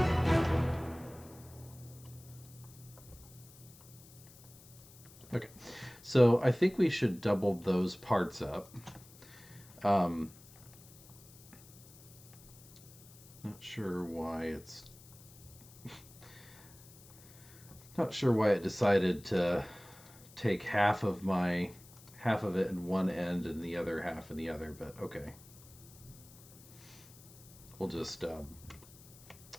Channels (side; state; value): left; noise; hiss, 21 dB below the sound